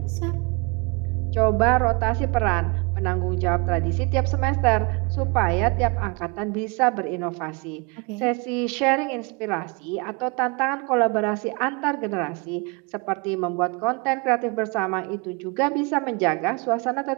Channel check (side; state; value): left; quieter; 29.5 dB